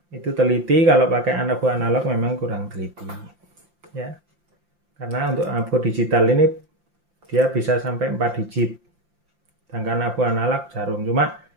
itu teliti, kalau pakai AVO analog memang kurang teliti ya, karena untuk AVO digital ini dia bisa sampai 4 digit, sedangkan AVO analog jarum. Cuma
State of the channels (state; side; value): late; left; 5.8 ms